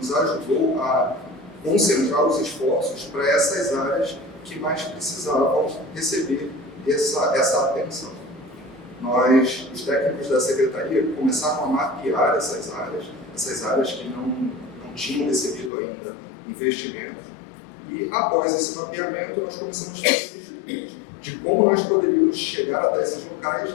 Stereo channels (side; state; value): right; drops out; at 15.7 s